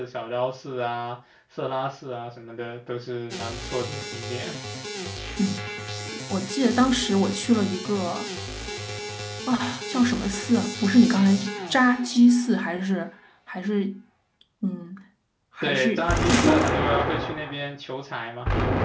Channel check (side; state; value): both; identical; correlation 1.00